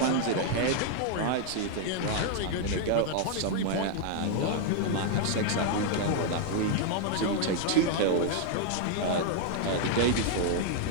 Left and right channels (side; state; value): both; different; correlation 0.00